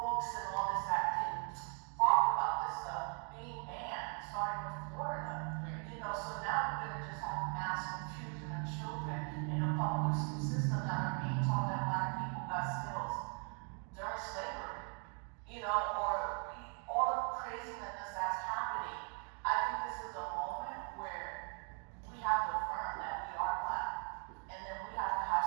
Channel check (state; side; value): quieter; left; 39.6 dB